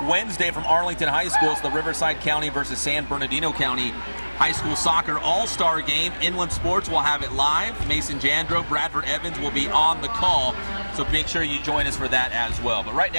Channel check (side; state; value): both; inverted; correlation -1.00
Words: Wednesday from Arlington High School. It's the Riverside County versus San Bernardino County High School Soccer All-Star Game. Inland Sports will have it live. Mason Jandro, Bradford Evans will be on the call, so make sure you join us for that as well. But right